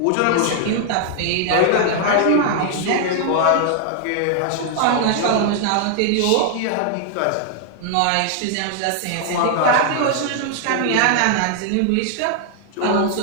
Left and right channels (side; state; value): both; different; correlation 0.00